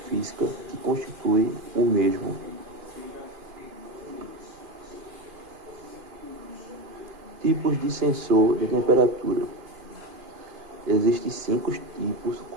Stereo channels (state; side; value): late; left; 2.5 ms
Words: física que constitui o mesmo. Tipos de sensor de temperatura. Existem 5 tipos